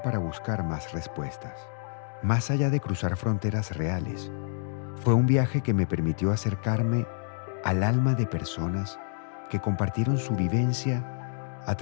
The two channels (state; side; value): silent; right; digital silence